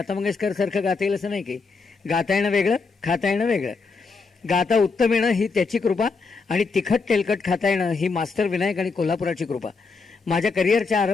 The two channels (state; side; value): quieter; right; 4.5 dB